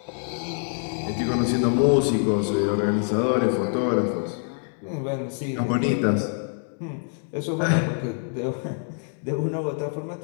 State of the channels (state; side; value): silent; right; 57 dB below the other